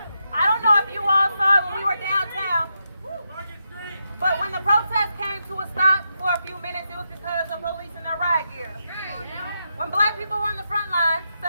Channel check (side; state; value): both; inverted; correlation -0.84